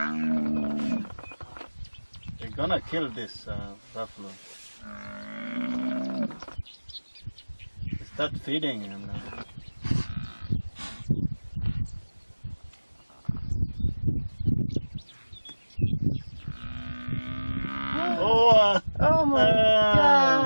They're gonna kill this buffalo. Start feeding him now. Oh my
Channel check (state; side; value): inverted; both; correlation -1.00